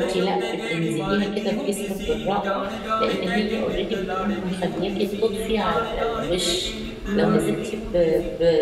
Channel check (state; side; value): identical; both; correlation 1.00